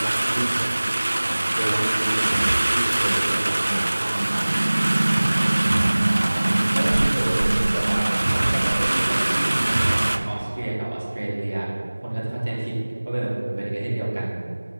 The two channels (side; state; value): both; inverted; correlation -1.00